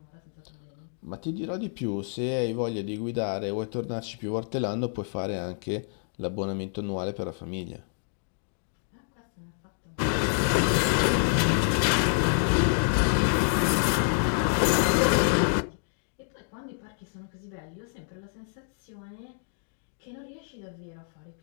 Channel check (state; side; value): silent; right; digital silence